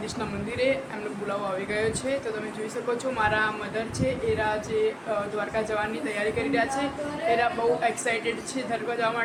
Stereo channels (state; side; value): identical; both; correlation 1.00